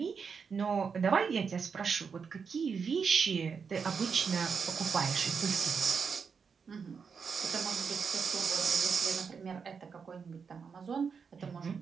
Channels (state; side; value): quieter; left; 5.9 dB